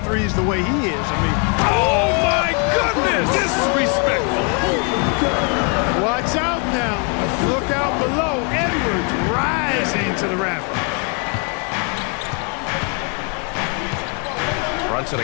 threes the way he is, I mean... Oh, my goodness! Disrespectful. Watch out now. Look out below. Edwards rising to the rafters. Brunson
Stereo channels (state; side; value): quieter; right; 36.4 dB